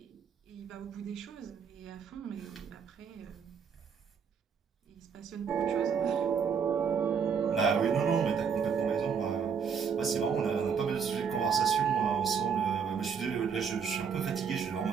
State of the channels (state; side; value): quieter; left; 6.6 dB